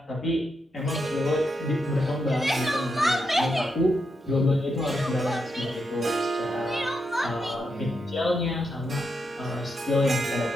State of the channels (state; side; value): normal; both; correlation 0.83